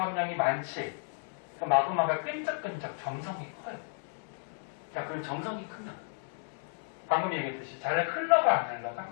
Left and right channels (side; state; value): right; silent; 56 dB below the other